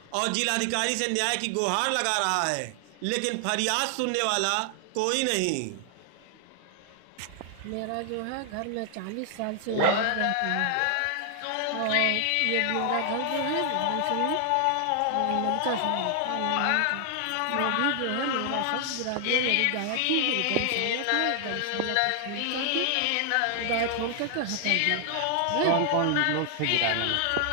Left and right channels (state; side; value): different; both; correlation 0.00